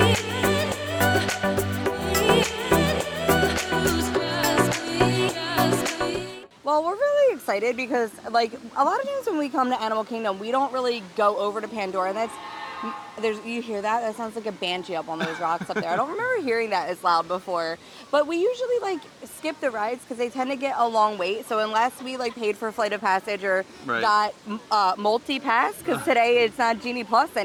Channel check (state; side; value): identical; both; correlation 1.00